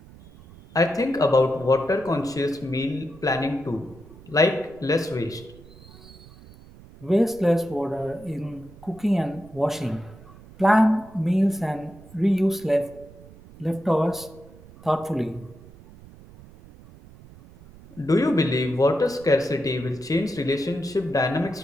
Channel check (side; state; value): right; noise; rumble, 21 dB below the sound